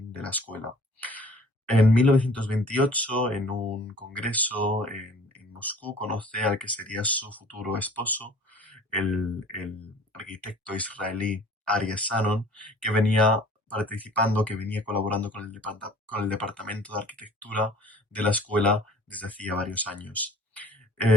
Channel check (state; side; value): normal; both; correlation 0.50